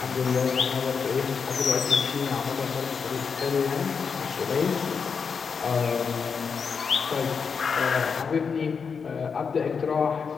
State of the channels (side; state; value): right; quieter; 5.9 dB